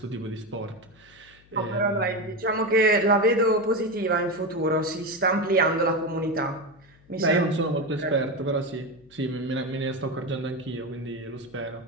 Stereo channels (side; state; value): left; noise; hum, 28 dB below the sound